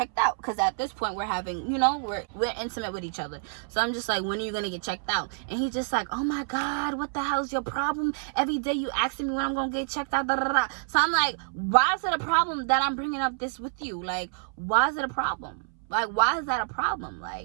out? Because at this point we're having, we're intimate with each other. So I'm just like, when are you gonna get checked out? And he's just like, oh my God, what the hell's your problem? Every day you asking me when I'm gonna get checked out. Da, da, da. So I'm like, why is it a problem that I'm bringing up this with you? Like, why is it a problem? Like, why is that a problem?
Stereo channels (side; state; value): left; silent; 59 dB below the other